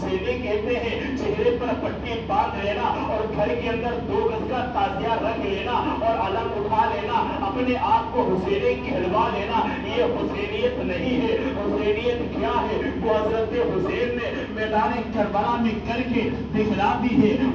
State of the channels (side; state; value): both; identical; correlation 1.00